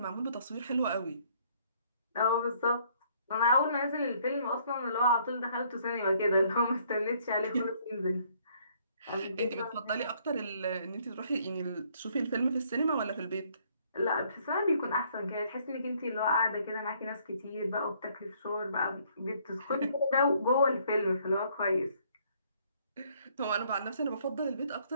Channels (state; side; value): inverted; both; correlation -0.64